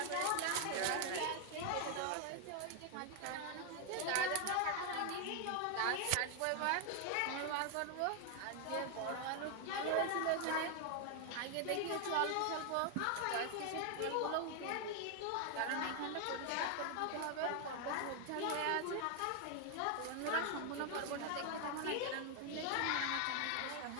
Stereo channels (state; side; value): different; both; correlation 0.00